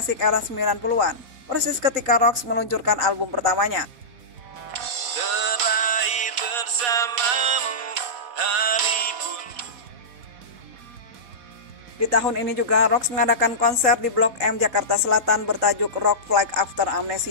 era 90-an, persis ketika Rocks meluncurkan album pertamanya. Di tahun ini juga Rocks mengadakan konser di Blok M Jakarta Selatan bertajuk Rock Flag After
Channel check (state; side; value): late; left; 4.1 ms